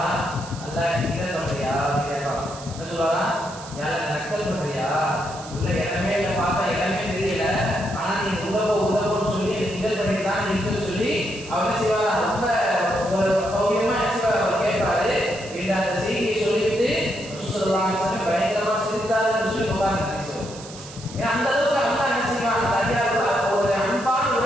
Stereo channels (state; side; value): noise; right; hiss, 16 dB below the sound